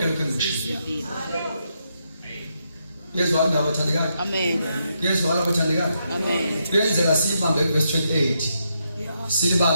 lokho engikushilo. Yezwa indaba bathandekayo. Amen. Yezwa abathandekayo. Amen. Kuyenzeka sibambe verse 28.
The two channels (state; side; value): inverted; both; correlation -0.80